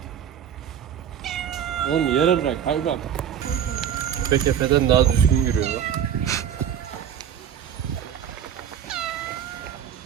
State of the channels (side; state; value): left; quieter; 9.1 dB